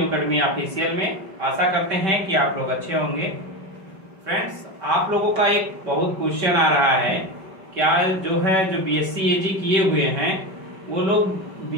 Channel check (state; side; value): late; left; 5.2 ms